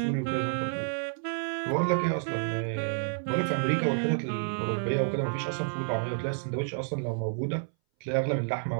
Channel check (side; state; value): left; silent; 58 dB below the other